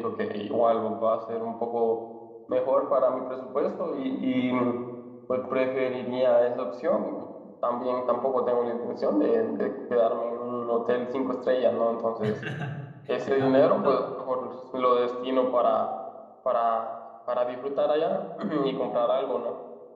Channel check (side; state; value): both; identical; correlation 1.00